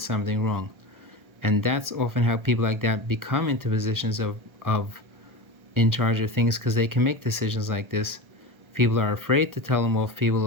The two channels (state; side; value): late; left; 1.3 ms